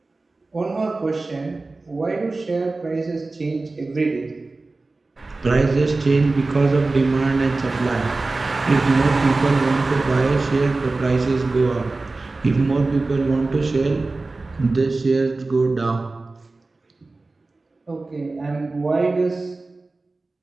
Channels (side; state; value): left; quieter; 3.4 dB